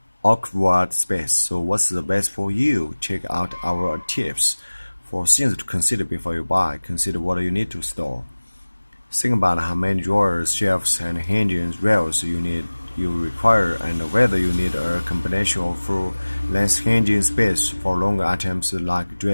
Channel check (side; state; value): both; inverted; correlation -1.00